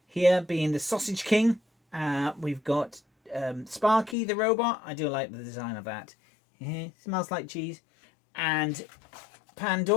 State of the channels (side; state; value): right; drops out; at 4.2 s